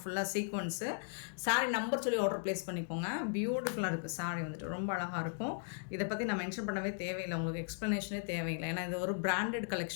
ஃபுல்லாக சீக்வன்ஸு. சாரி நம்பர் சொல்லி ஆர்டர் ப்ளேஸ் பண்ணிக்கோங்க. பியூட்டிஃபுல்லாக இருக்குது சாரி வந்துட்டு, ரொம்ப அழகாக இருக்கும். இதை பற்றி நான் மென்ஷன் பண்ணவே தேவையில்லை, உங்களுக்கு எக்ஸ்ப்ளனேஷனே தேவையில்லை. ஏன்னா இது ஒரு பிராண்டட்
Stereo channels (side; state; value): right; silent; digital silence